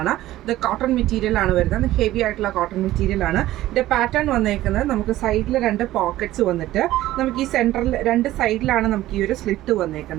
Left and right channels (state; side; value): quieter; left; 15.2 dB